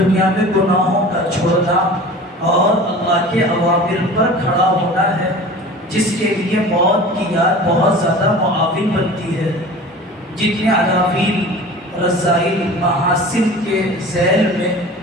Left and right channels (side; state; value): both; normal; correlation 0.39